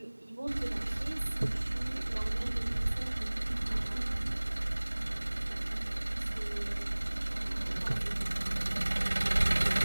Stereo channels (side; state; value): both; inverted; correlation -1.00